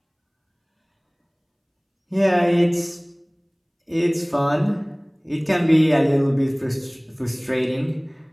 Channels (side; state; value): both; identical; correlation 1.00